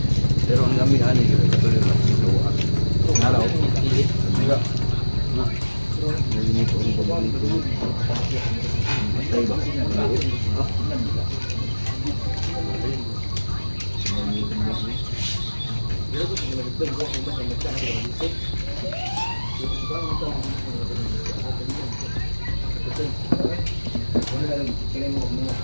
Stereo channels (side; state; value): both; inverted; correlation -1.00